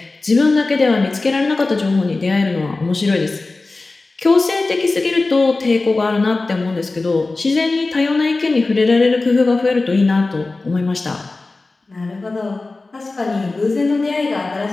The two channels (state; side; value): quieter; right; 3.4 dB